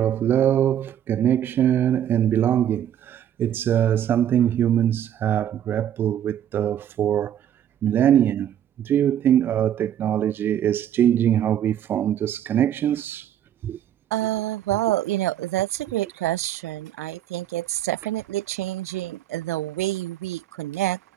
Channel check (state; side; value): quieter; left; 10.5 dB